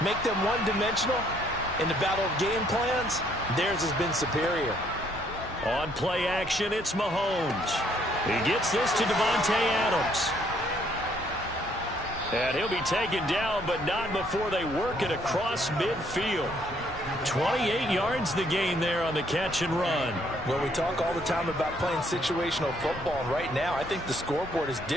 make them one-dimensional. In the battle of game plans, theirs has been superior. On play action, it's Mahomes. He gets this to Devontae Adams. And he'll be taken down, but not before they work it across midfield. 28 yards the gain there on the catch and run. Well, we talk all the time about playing situational football, and right now I think the scoreboard is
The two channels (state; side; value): normal; both; correlation 0.67